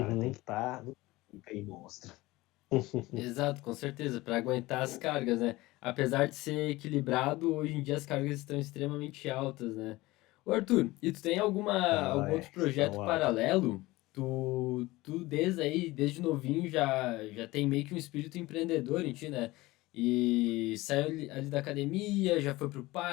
tem Uhum. que estar no aí monstro. Exato, com certeza, para aguentar as cargas, né? Apesar de ser equilibrado, hoje em dia as cargas estão extremamente altas, né? Ô Arthur, e tu tem Não, algum outro projeto estão altas. paralelo? Tu desde novinho já tem meio que um espírito empreendedor em ti, né? E saiu ali da academia, já foi pro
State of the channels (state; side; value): quieter; right; 19.8 dB